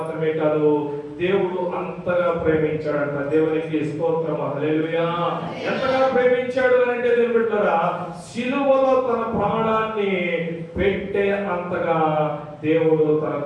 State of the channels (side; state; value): both; identical; correlation 1.00